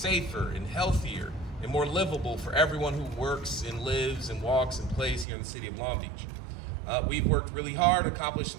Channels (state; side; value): drops out; left; at 5.2 s